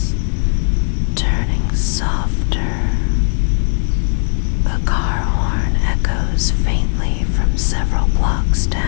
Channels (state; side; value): silent; right; 68 dB below the other